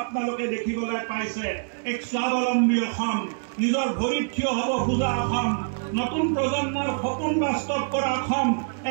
আপোনালোকে দেখিবলৈ পাইছে। এক স্বাৱলম্বী অসম, নিজৰ ভৰিত থিয় হ'ব খোজা অসম, নতুন প্ৰজন্মৰ সপোন বাস্তৱ কৰা অসম,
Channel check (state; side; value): silent; left; digital silence